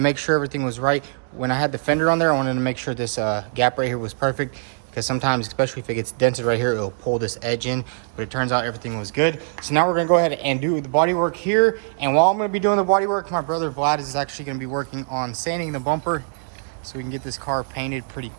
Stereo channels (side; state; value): left; silent; digital silence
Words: sure everything was right, when I had the fender on there, I wanted to make sure this gap right here was perfect, because sometimes, especially if it gets dented right here, it'll pull this edge in. But it turns out everything was good. So now we're gonna go ahead and do the body work here. And while I'm gonna be doing the body work, my brother Vlad is actually gonna be working on sanding the bumper so we can get this car painted pretty